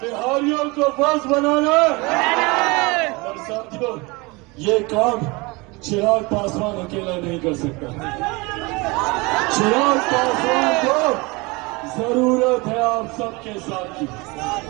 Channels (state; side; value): quieter; left; 25.6 dB